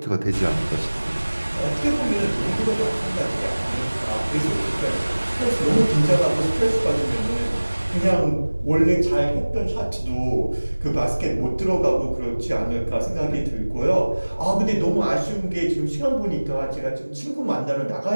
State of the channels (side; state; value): both; inverted; correlation -1.00